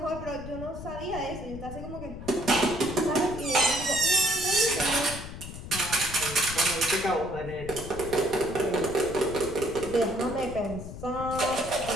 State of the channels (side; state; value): left; noise; rumble, 11 dB below the sound